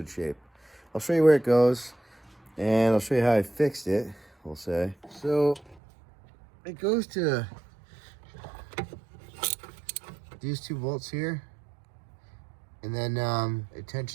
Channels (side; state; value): left; drops out; at 5.8 s